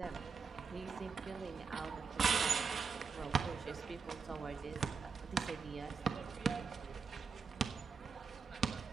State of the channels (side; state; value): left; quieter; 5.4 dB